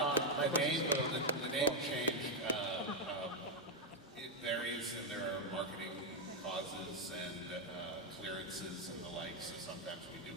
The name change, it varies, and there are marketing causes and clearances and the like, so sometimes we do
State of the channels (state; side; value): normal; both; correlation 0.02